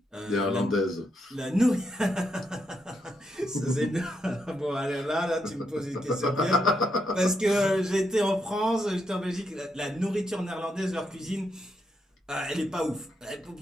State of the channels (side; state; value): both; normal; correlation 0.81